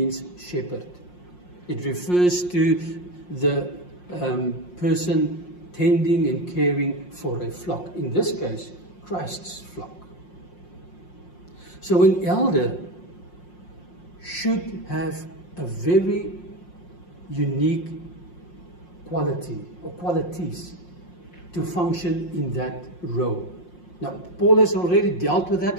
shepherd. It refers to the person tending and caring for a flock. In this case, Christ's flock. So an elder should have a very unique quality or qualities to function in that role. Now, Paul has already dealt with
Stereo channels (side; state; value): right; late; 5.6 ms